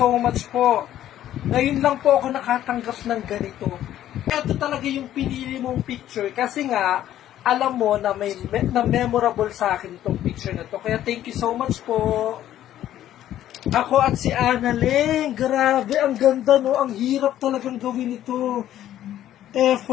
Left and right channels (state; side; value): quieter; right; 12.2 dB